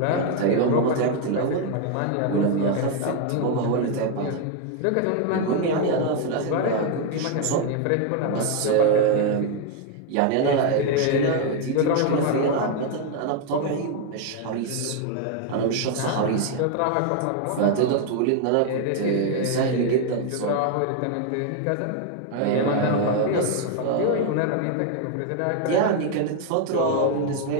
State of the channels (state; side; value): different; both; correlation 0.01